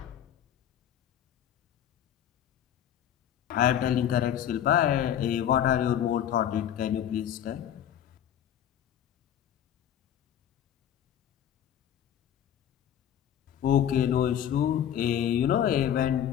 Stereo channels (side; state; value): right; quieter; 10.1 dB